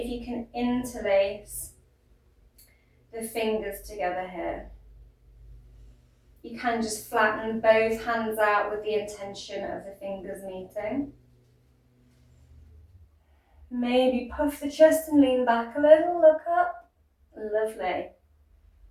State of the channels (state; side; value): identical; both; correlation 1.00